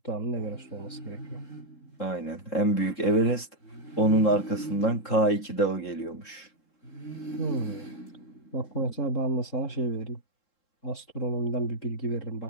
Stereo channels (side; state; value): right; late; 3.7 ms